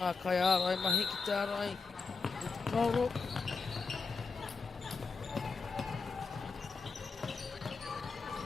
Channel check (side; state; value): right; quieter; 4.7 dB